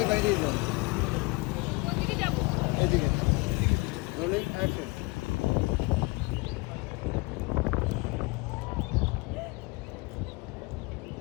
বাইরে যান, এদিকে রোলিং অ্যাকশন।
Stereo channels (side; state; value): right; quieter; 26.5 dB